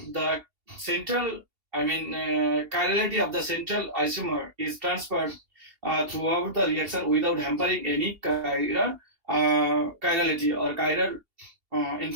the central, chirality of the central isomer is transferred throughout the reaction without hampering any chirality, or chiral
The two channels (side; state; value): left; late; 2.8 ms